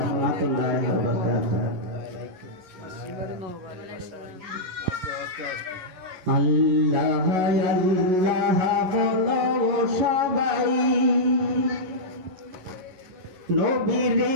ওয়া বারাকাতুহু। আল্লাহ আল্লাহ বলো সবাই, নবীর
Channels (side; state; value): left; late; 11 ms